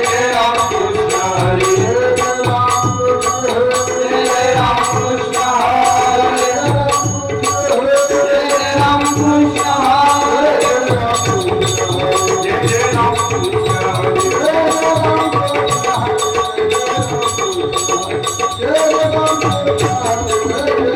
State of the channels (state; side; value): identical; both; correlation 1.00